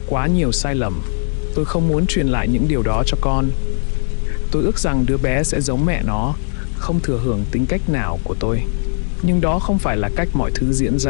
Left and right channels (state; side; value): silent; right; digital silence